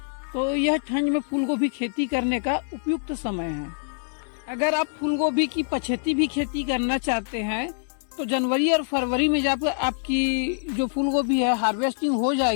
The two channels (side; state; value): right; silent; digital silence